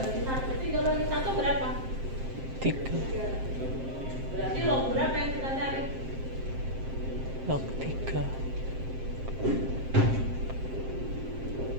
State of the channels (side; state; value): left; late; 7.6 ms